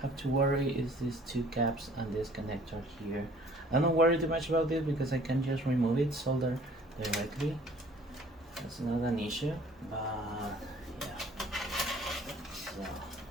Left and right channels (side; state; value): both; normal; correlation 0.54